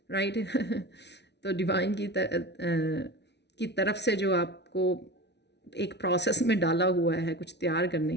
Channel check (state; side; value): late; right; 0.50 ms